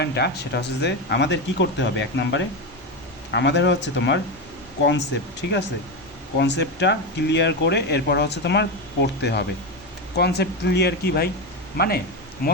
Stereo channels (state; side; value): noise; left; rumble, 25 dB below the sound